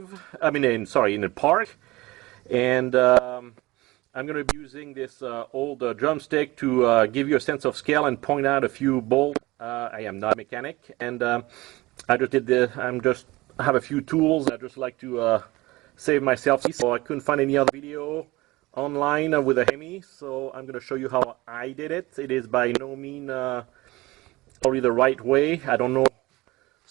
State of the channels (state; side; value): quieter; left; 20.6 dB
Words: In the park. And I'm going to be using this old drumstick to give you a sense of scale and point out a few bolts. I am not a mechanic, and I have a few tools. I just like to save myself. So I couldn't find any other video online with a Hemi, so I'm going to show you how I did it. It is by no means probably the right way. I don't know